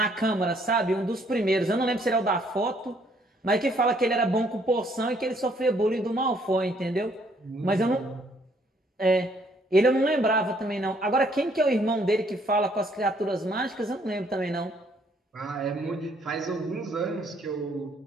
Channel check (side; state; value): both; normal; correlation 0.66